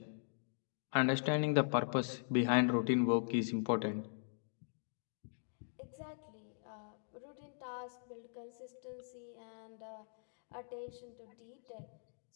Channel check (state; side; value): silent; right; digital silence